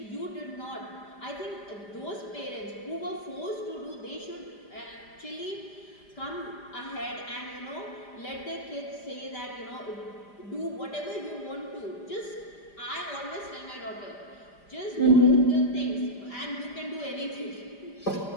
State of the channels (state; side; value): late; right; 5.0 ms